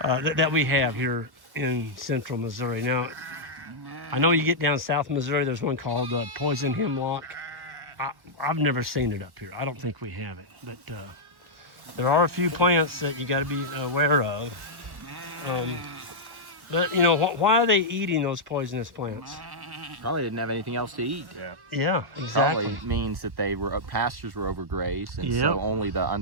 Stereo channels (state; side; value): late; left; 1.3 ms